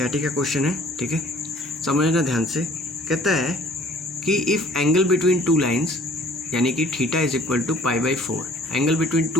का क्वेश्चन है, ठीक है, समझना ध्यान से। कहता है कि if angle between two lines, यानी कि theta is equal to π/4, angle between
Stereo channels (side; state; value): both; normal; correlation 0.54